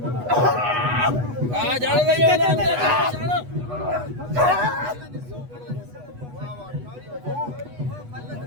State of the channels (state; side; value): late; left; 8.2 ms